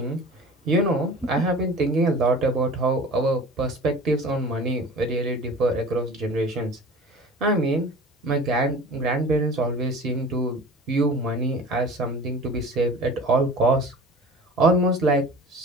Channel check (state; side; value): normal; both; correlation 0.40